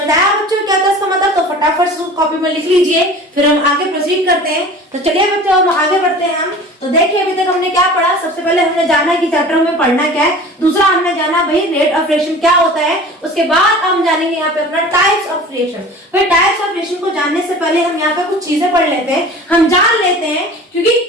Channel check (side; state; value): both; normal; correlation 0.40